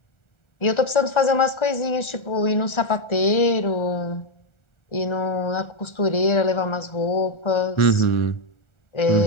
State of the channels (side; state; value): right; late; 1.4 ms